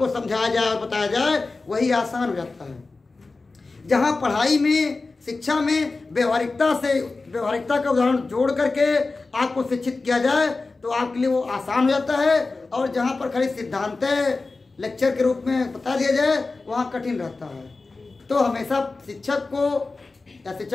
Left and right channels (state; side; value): quieter; right; 3.7 dB